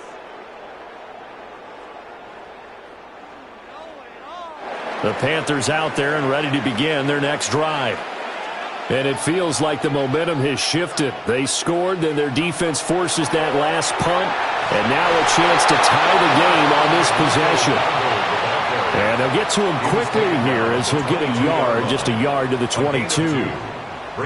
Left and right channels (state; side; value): identical; both; correlation 1.00